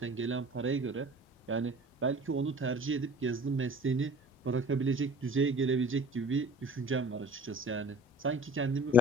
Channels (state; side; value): normal; both; correlation 0.44